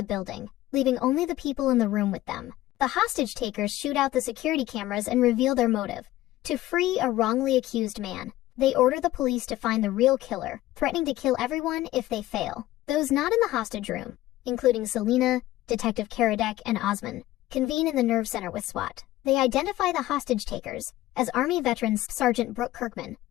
building, leaving only the people in the room with them. The hostage takers shoot out the security cameras and reveal their motive: to free a wrongly accused man. They order the police to find the real killer, threatening to kill everyone if they fail. Those not in the hostage room, including Selena, Detective Karadec, and Osman, convene in the nerve center with SWAT. They identify the hostage takers as Army veterans Sergeant Brooke Kirkman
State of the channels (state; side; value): quieter; right; 15.9 dB